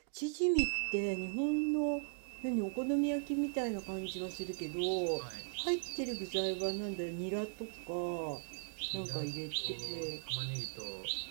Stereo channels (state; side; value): silent; left; digital silence